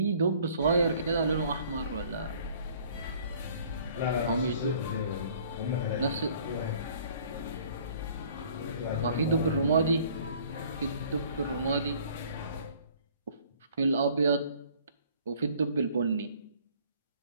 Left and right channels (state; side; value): inverted; both; correlation -0.55